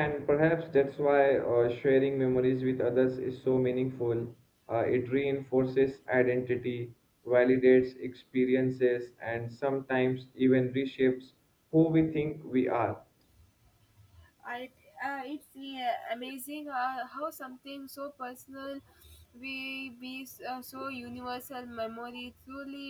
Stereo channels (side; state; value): both; identical; correlation 1.00